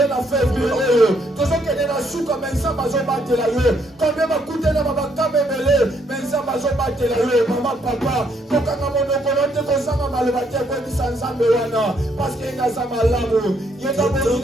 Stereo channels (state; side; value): normal; both; correlation 0.71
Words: na février, toujours que na souka mensa bazo batela yo, combien va coûter na babaka bebele, mensa bazo batela yo, maman papa, kokanga monoko lote kozanga maloba te ko bisanzambe wana, parce que ngaza malamu, yenda